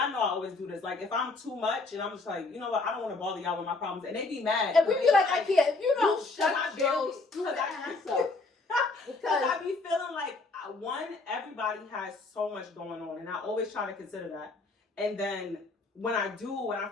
know I always do this. Like, if I'm too much, and I'm just like, you know what, I don't want to bother y'all with my problems, and they be mad. And we be like, I can't. If you don't You shut shut your your stupid ass ass up. Because Because I be feeling like, one, everybody has so much going on, and I always try to consider that. And then when I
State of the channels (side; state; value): right; quieter; 3.6 dB